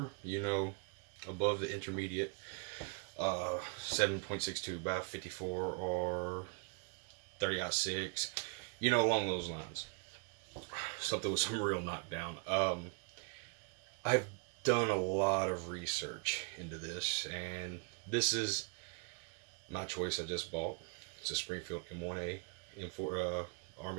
above the intermediate 7.62 by 54 or 30-06, along those lines. Something with some real knockdown. I've done a lot of research into this, and this is my choice. I just bought. It's a Springfield M1a. M4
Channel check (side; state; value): left; quieter; 36.9 dB